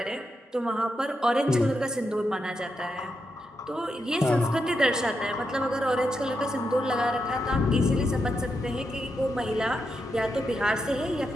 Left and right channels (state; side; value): normal; both; correlation 0.84